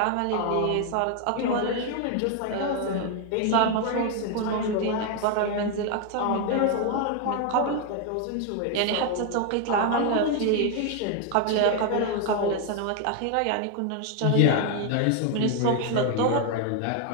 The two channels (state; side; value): different; both; correlation 0.01